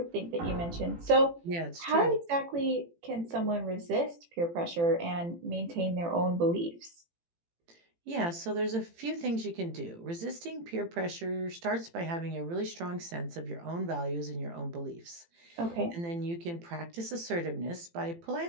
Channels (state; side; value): late; left; 18 ms